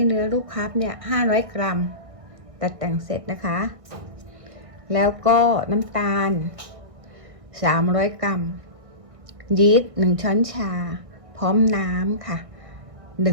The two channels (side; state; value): left; late; 1.6 ms